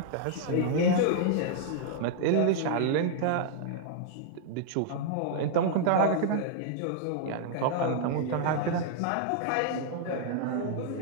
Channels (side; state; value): both; different; correlation -0.01